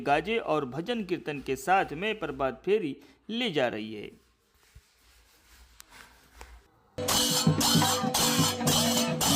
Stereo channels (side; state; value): both; identical; correlation 1.00